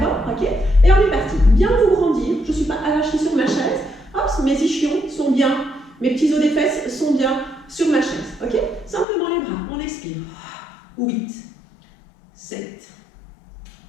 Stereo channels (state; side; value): drops out; right; at 9.1 s